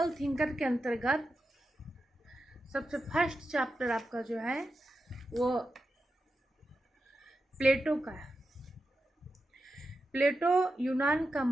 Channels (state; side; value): normal; both; correlation 0.89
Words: थिंकर के अंतर्गत सबसे फर्स्ट चैप्टर आपका जो है वो प्लेटो का है। प्लेटो यूनान का